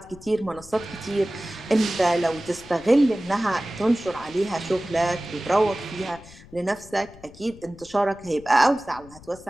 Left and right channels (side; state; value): left; noise; rumble, 21 dB below the sound